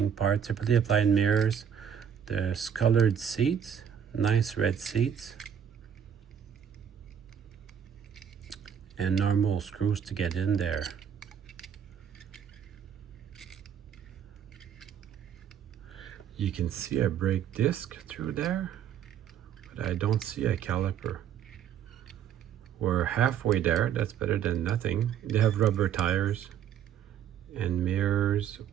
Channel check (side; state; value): left; quieter; 8.6 dB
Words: part. Separately applied mirrors. There's colored seats, nice red seats, and normal screws to get in there. You can see a brake disc through there, but I don't see a caliper. We're halfway there. That's better than nothing. They have rubber tires and mirrors